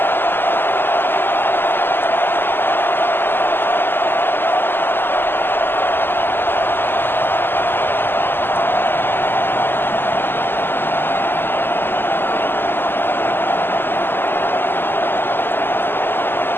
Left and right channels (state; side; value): late; right; 0.10 ms